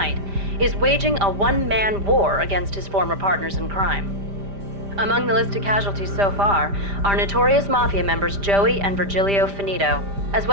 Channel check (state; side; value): late; left; 5.0 ms